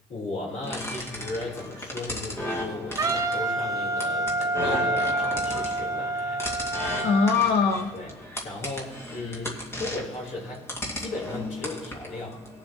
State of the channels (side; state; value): both; normal; correlation 0.41